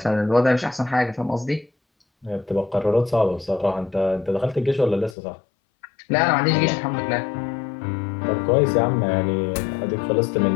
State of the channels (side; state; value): right; drops out; at 5.2 s